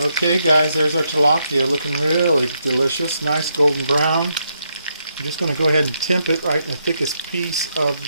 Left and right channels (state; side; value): inverted; both; correlation -0.79